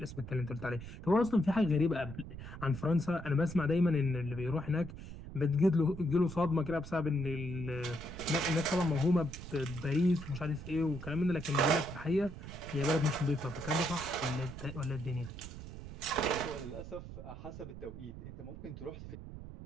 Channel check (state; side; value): noise; right; rumble, 11 dB below the sound